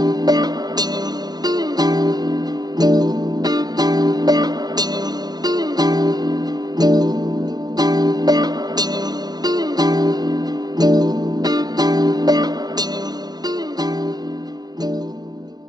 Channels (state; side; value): late; left; 0.20 ms